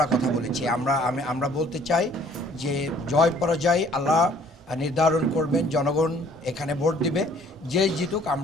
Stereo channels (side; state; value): both; normal; correlation 0.57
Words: কথা বলেছি। আমরা বলতে চাই যে জয় পরাজয় আল্লাহ নির্ধারণ করবেন, জনগণ এখানে ভোট দিবে, যেই জিতুক